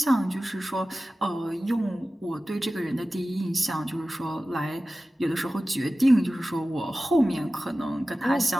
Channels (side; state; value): both; normal; correlation 0.95